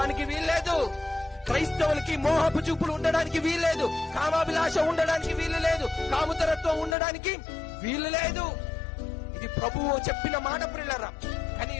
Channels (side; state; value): right; drops out; at 7.0 s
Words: వీల్లేదు. క్రైస్తవులకి మోహపు చూపులు ఉండడానికి వీల్లేదు, కామాభిలాష ఉండడానికి వీలు లేదు, కాముతరత్వం ఉండడానికి వీలు లేదు. ఇది ప్రభువు చెప్పిన మాట ప్రియులారా. కానీ